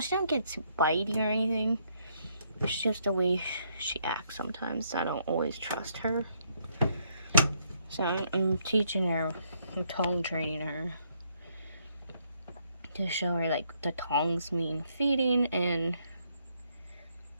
don't get too bitey or anything. It's just the way she acts sometimes. I don't always trust her. So I'm teaching her, I'm tongue training her to show her like the tongs mean feeding and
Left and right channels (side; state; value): both; inverted; correlation -0.72